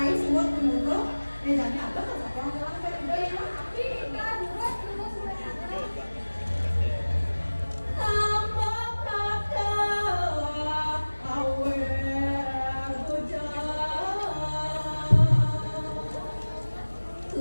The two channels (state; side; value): inverted; both; correlation -1.00